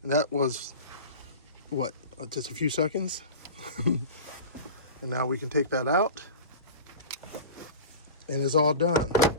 And that was, what, just a few seconds? And now we can take that out, and it's all done.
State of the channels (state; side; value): inverted; both; correlation -0.32